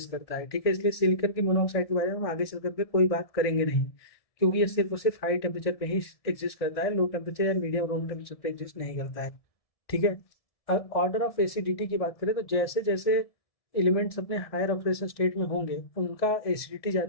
करता है, ठीक है। इसलिए सिलिकॉन की मोनोऑक्साइड के बारे में हम आगे चल करके कोई बात करेंगे नहीं, क्योंकि ये सिर्फ और सिर्फ हाई टेम्परेचर पे ही एग्जिस्ट करता है, लो टेम्परेचर या मीडियम रूम टेम्परेचर पे एग्जिस्ट नहीं करता है, ठीक है। अब ऑर्डर ऑफ एसिडिटी की बात करें तो जैसे जैसे एलिमेंट्स अपने हायर ऑक्सीडेशन स्टेट में होंगे उनका एसिडिटी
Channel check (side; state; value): right; late; 1.7 ms